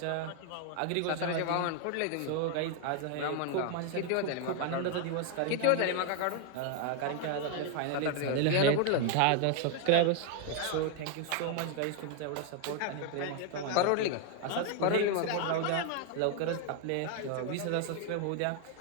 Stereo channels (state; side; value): different; both; correlation 0.00